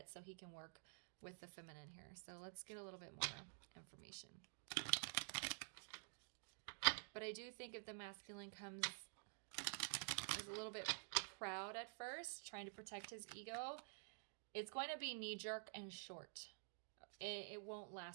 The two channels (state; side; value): silent; left; digital silence